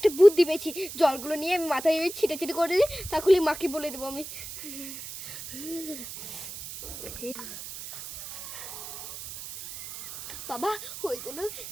বুদ্ধি পেয়েছি। জলগুলো নিয়ে আমি মাথায় ছিটে ছিটে করে দিই, তাহলে মাকে বলে দেবো আমি। বাবা হয়ে গেল,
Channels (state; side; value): noise; right; hiss, 10 dB below the sound